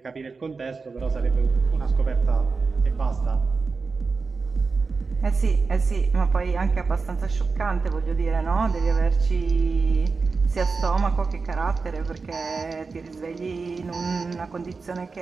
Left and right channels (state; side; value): quieter; left; 4.5 dB